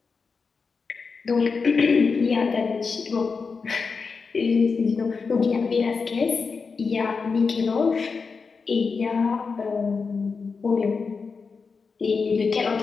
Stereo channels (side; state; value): right; quieter; 5.0 dB